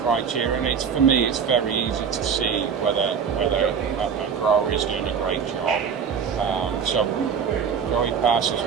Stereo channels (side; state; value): left; quieter; 6.8 dB